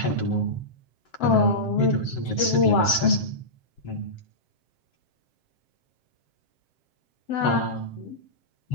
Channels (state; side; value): late; right; 7.6 ms